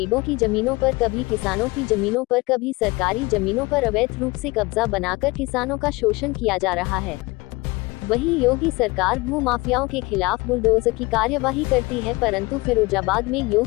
की जमीनों पर, कभी किसानों की जमीनों पर, कभी सरकारी जमीनों पर अवैध रूप से कब्जा बनाकर किसानों का शोषण किया जा रहा है। वहीं योगी सरकार भू माफियाओं के खिलाफ बुलडोजर की कार्यवाही करती है, परंतु फिरोजाबाद में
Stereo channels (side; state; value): right; quieter; 23.3 dB